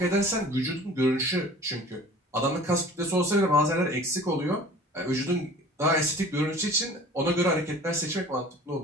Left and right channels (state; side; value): normal; both; correlation 0.45